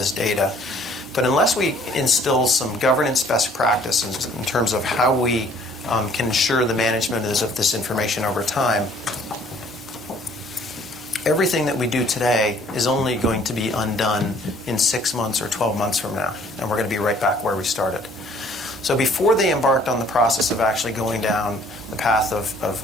data. But unless we instill some governance best practices in terms of how we can ensure the management of this information over time, everything that we do today is only going to be undone in 6 months or 12 months from now. And we're going to be right back where we started. So before they embarked on the process of actually going down the path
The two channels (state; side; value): normal; both; correlation 0.58